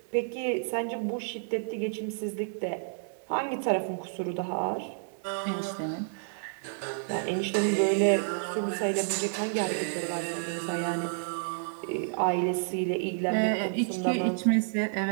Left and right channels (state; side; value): silent; left; digital silence